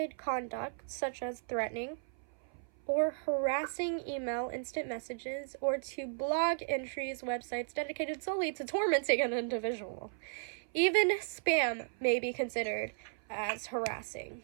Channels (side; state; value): left; silent; 54 dB below the other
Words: conduct, such as threatening or harassing email, instant messages, or to blog entries, websites dedicated solely to tormenting an individual. Even spam may be considered as harassing.